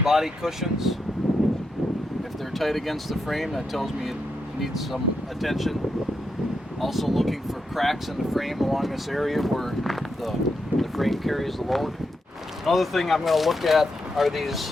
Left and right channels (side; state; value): both; normal; correlation 0.83